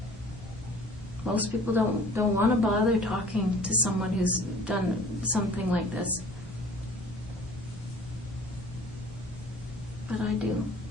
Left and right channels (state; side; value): normal; both; correlation 0.49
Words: Most people don't want to bother talking to someone who's done something like this. But I do.